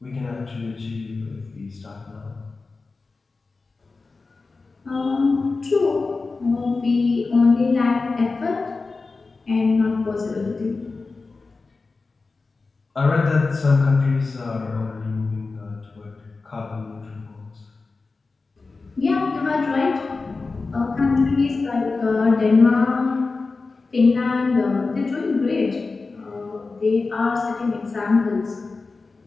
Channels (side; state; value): right; quieter; 4.0 dB